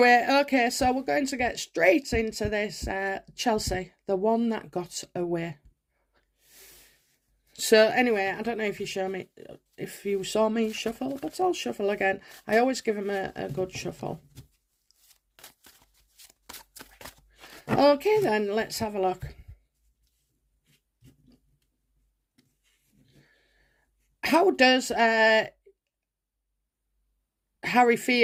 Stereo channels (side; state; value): both; identical; correlation 1.00